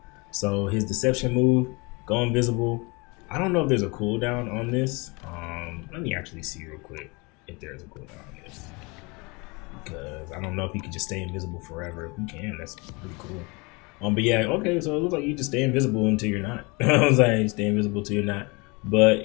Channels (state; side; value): quieter; right; 27.7 dB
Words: So his deception move, go invisible. I don't know if there's a cooldown on this. Let me actually see real quick if there's a cooldown on this, because I don't know if you can just stay invisible forever. If you can, that's pretty cool. But yeah, okay, so it looks like you just stay invisible until you're not. I was like, stay invisible until you're not.